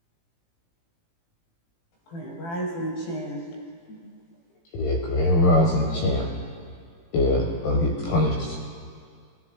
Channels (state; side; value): late; right; 18 ms